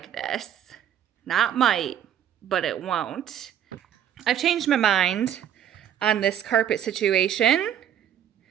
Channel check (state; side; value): quieter; left; 10.0 dB